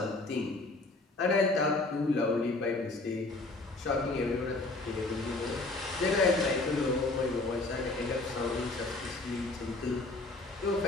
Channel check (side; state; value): right; quieter; 3.1 dB